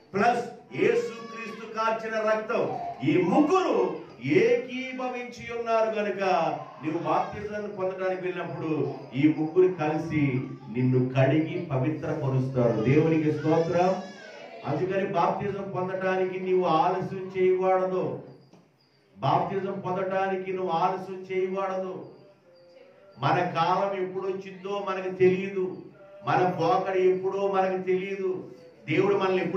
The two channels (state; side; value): identical; both; correlation 1.00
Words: ప్లస్ యేసుక్రీస్తు కార్చిన రక్తం, ఈ ముగ్గురు ఏకీభవించి ఉన్నారు గనుక నువ్వు బాప్తిజాన్ని పొందడానికి వెళ్ళినప్పుడు ఈ ముగ్గురు కలిసి నిన్ను కడిగి పవిత్రపరుస్తారు. దేవునికి స్తోత్రం. అందుకని బాప్తిజం పొందటానికి నీవు ఆలస్యం చేయకూడదు. బాప్తిజం పొందటానికి నువ్వు ఆలస్యం చేయకూడదు. మన కాలం ఎప్పుడు వచ్చిందో మనకు తెలియదు, మన పోకడ ఎప్పుడో మనకు తెలియదు, దేవుడు మనల్ని